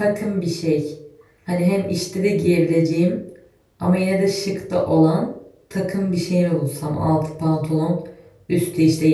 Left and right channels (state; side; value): identical; both; correlation 1.00